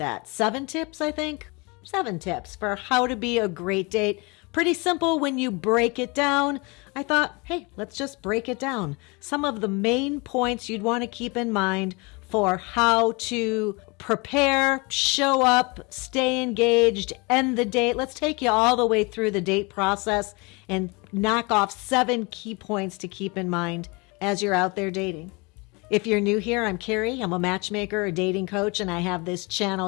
7 tips, I think. 7 tips for how to be a great date. Pretty simple when you break it down. I thought, hey, let's just break it down. Some of the main points you'd want to keep in mind for how to prepare, show up, stay engaged, end the date. Let's take you all the way through the date process and knock off 7 key points to keep in mind as you're out there dating. If you're new here, I'm Carey. I'm a matchmaker, a dating coach, and I have this channel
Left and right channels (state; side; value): quieter; right; 28.0 dB